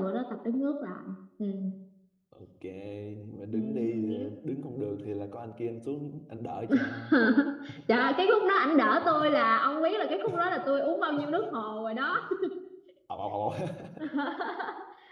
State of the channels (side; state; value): both; identical; correlation 1.00